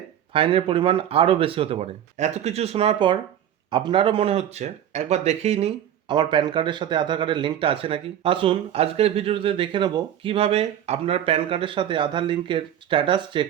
ফাইনের পরিমাণ আরও বেশি হতে পারে। এত কিছু শোনার পর আপনারও মনে হচ্ছে একবার দেখেই নিই আমার প্যান কার্ডের সাথে আধার কার্ডের লিঙ্কটা আছে নাকি। আসুন আজকের ভিডিওতে দেখে নেব কিভাবে আপনার প্যান কার্ডের সাথে আধার লিঙ্কের স্ট্যাটাস চেক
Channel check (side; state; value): left; quieter; 10.4 dB